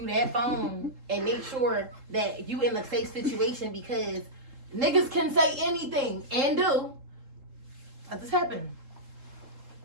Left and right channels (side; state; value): left; late; 3.7 ms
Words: that phone and make sure that you in a safe situation because niggas can say anything and do. That just happened.